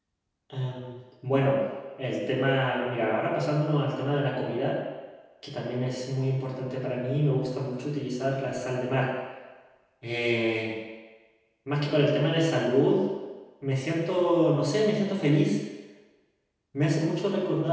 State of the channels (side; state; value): both; identical; correlation 1.00